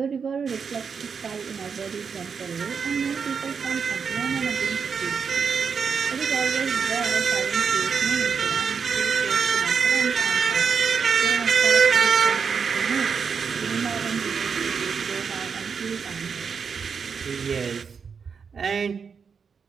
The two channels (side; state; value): left; quieter; 6.1 dB